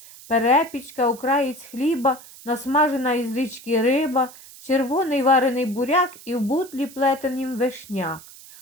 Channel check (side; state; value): right; noise; hiss, 19 dB below the sound